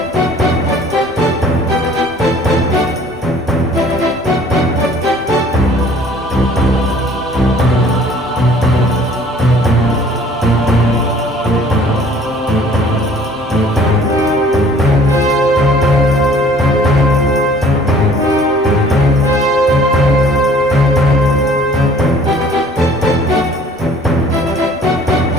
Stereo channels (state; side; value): normal; both; correlation 0.53